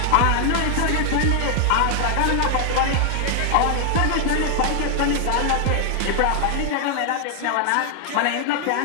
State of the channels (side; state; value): both; different; correlation 0.00